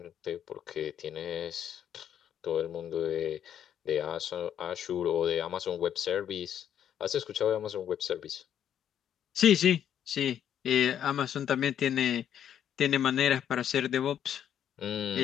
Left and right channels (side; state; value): right; quieter; 9.6 dB